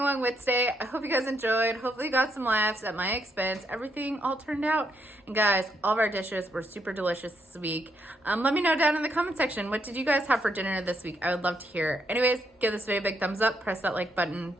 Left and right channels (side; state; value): both; normal; correlation 0.76